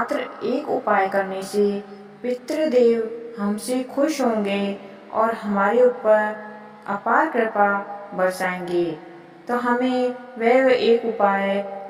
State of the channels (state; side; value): identical; both; correlation 1.00